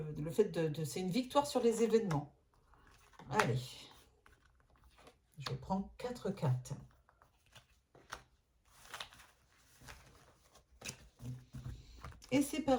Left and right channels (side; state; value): both; identical; correlation 1.00